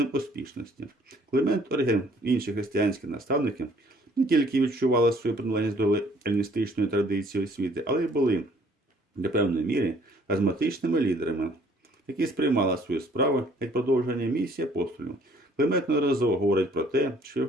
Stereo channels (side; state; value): both; normal; correlation 0.59